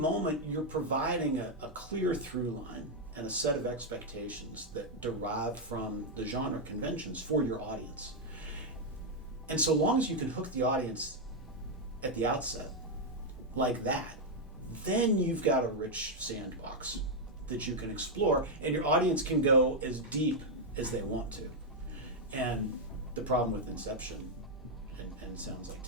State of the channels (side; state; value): right; noise; hum, 25 dB below the sound